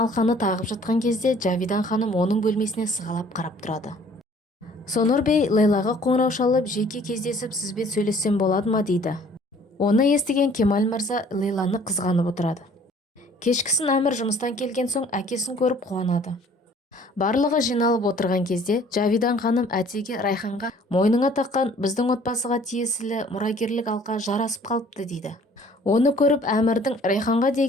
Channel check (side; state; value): both; normal; correlation 0.55